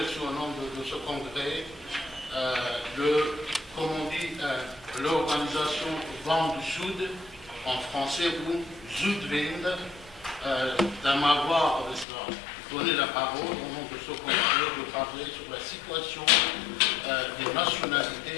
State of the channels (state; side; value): drops out; right; at 12.1 s